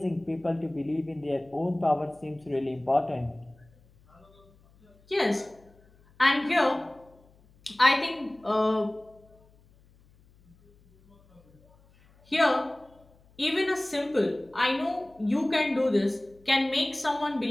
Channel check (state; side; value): noise; left; hum, 30 dB below the sound